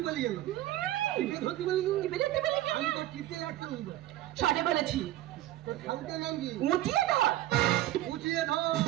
বলি গেল? টিপে ধরতি বলি গেল? টিপে ধরতে বলি গেল? আমি তো টিপে রাখতে বলবো। সঠিক বলেছি। তোর ঠাকুরের নাম কি? উঁচিয়ে ধর। উঁচিয়ে ধর।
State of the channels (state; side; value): quieter; left; 14.8 dB